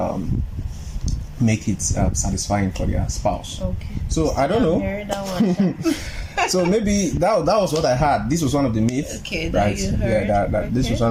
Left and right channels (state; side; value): identical; both; correlation 1.00